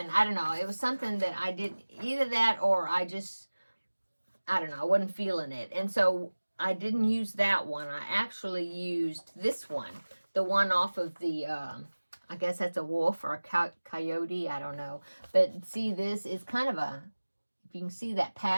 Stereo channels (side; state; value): both; inverted; correlation -1.00